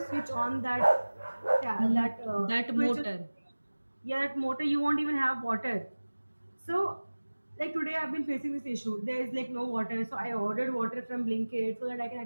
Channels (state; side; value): inverted; both; correlation -1.00